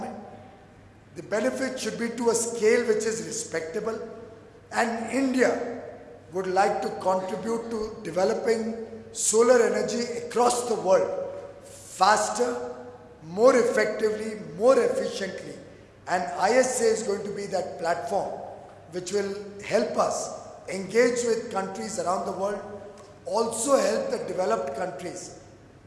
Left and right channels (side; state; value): both; identical; correlation 1.00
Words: The benefit should be to a scale which is respectable, and India would like to contribute to developing solar energy across the world faster, more effectively, more efficiently. And ISA is going to be that platform which will help us engage with countries around the world, also help the developed countries,